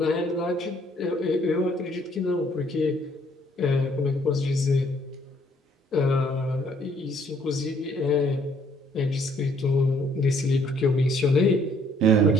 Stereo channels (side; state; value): both; normal; correlation 0.64